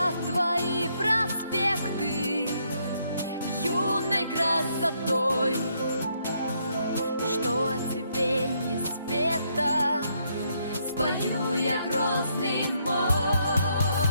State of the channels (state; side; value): inverted; both; correlation -0.74